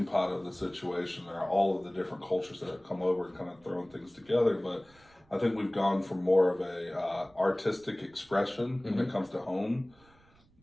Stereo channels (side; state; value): right; noise; rumble, 29 dB below the sound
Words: pot of the situation are all of the different cultures that have come over and kind of thrown things together, but I think we've gone from more of a artistic expression when it comes to home